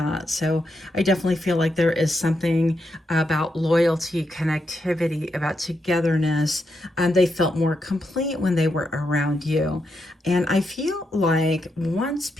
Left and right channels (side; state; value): both; normal; correlation 0.83